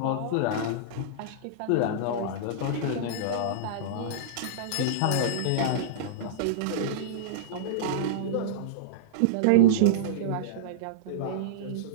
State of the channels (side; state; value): both; different; correlation -0.03